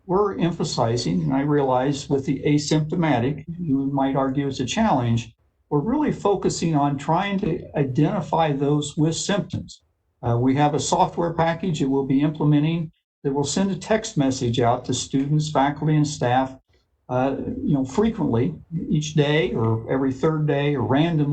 we're emphasizing, and I realize with the asymptomatic, you might argue it's a challenge, we're really focusing on trying to identify those with symptoms. We have a software package that we'll be implementing that will send a text message out to students, faculty, and staff, frequently, each day or every third day or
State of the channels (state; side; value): identical; both; correlation 1.00